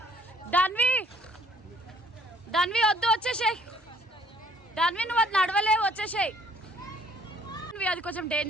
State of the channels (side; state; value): both; normal; correlation 0.60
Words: ధన్వి. దాన్వి వద్దు వచ్చేసేయ్, దాన్వి నువ్వు అది నడవలేవు వచ్చేసేయ్, అది కొంచెం